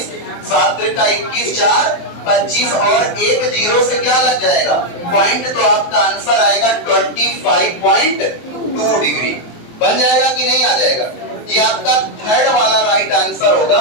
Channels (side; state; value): right; late; 23 ms